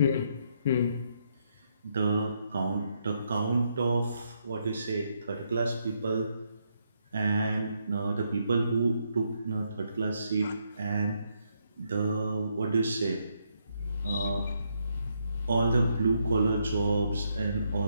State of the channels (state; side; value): inverted; both; correlation -0.77